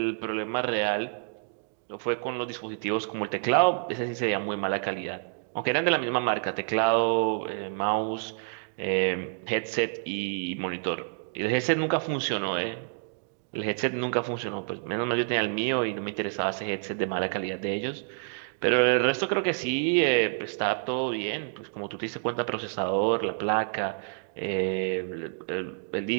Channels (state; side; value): silent; left; digital silence